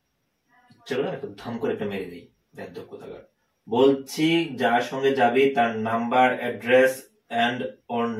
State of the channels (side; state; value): both; identical; correlation 1.00